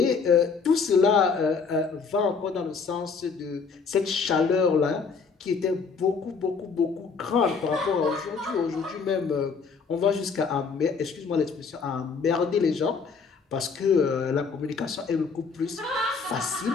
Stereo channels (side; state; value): right; quieter; 5.2 dB